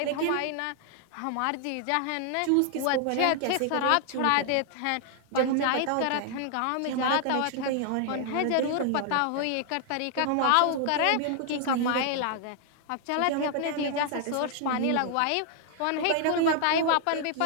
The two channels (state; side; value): different; both; correlation 0.00